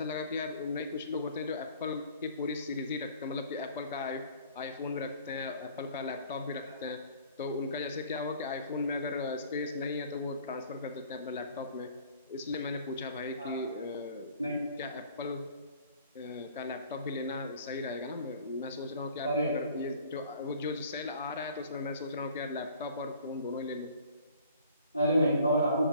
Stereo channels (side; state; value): both; inverted; correlation -0.52